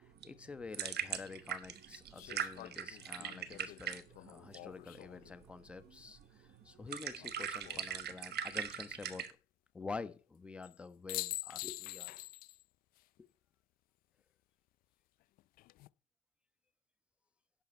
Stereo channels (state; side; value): normal; both; correlation 0.32